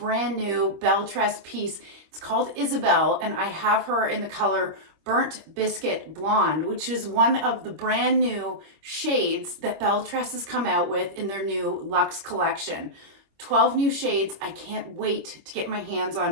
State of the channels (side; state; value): left; late; 25 ms